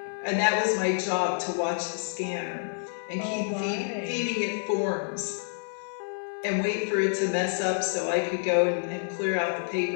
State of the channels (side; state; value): right; silent; digital silence